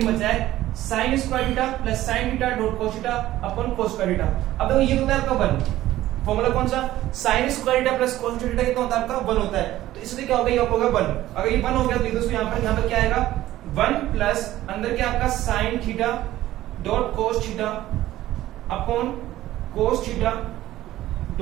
में बचा है sign square theta plus sine theta dot cos theta upon कोस स्क्वायर थीटा। अब देखो ये होता है आपका 1, फॉर्मूला कौन सा, sign square theta plus cos theta कितना होता है आपका 1 होता है, तो इसलिए क्या होगा, ये होगा 1। अगर ये 1 हो गया तो दोस्तों यहाँ पर क्या आएगा 1 प्लस अंदर क्या आपका sine theta dot cos theta upon cos theta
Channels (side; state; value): left; quieter; 14.8 dB